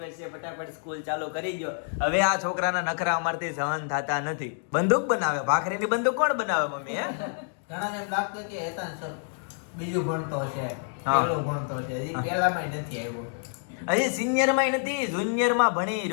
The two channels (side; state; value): right; silent; digital silence